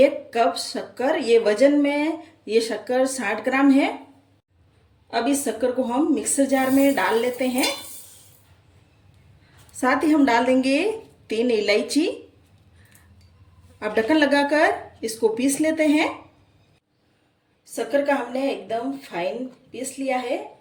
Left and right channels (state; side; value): identical; both; correlation 1.00